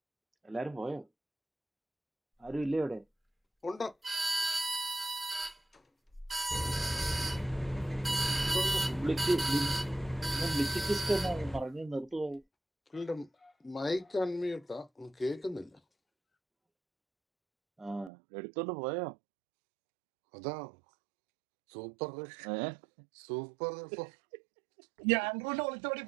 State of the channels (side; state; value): left; drops out; at 18.1 s